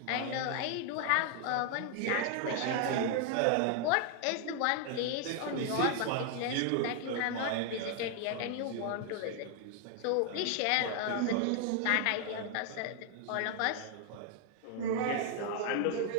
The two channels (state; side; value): different; both; correlation 0.00